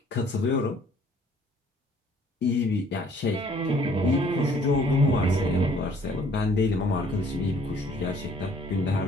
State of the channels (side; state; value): both; normal; correlation 0.59